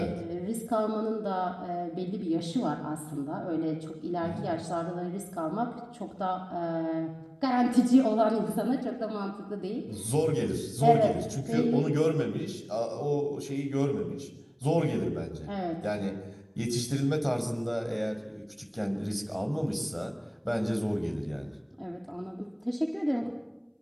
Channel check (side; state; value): both; identical; correlation 1.00